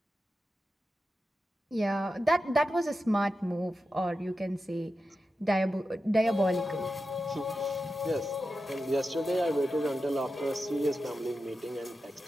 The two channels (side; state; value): both; normal; correlation 0.91